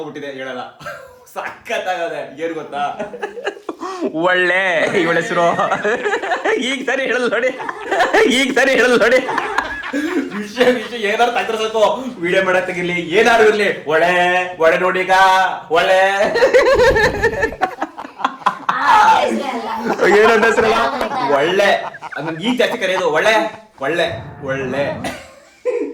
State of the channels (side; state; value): both; identical; correlation 1.00